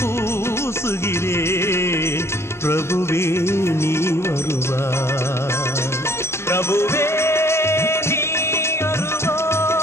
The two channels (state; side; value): late; right; 0.13 ms